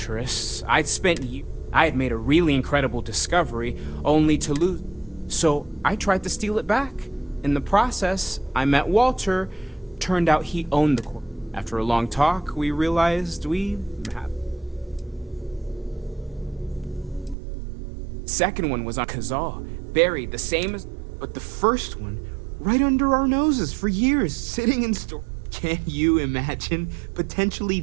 I had made a really incredible discovery, only to lose. So I tried to steal it back. In the process, I met Walter. Turned out he owned the corp. After a long talk, we realized we had... Second one was on Kazal, buried the same as... But the first one, right under our noses for years, sitting in store. Can you imagine?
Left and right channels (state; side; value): drops out; left; at 17.4 s